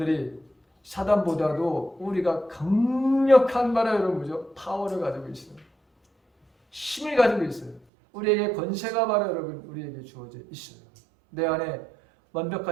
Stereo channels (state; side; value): drops out; left; at 7.8 s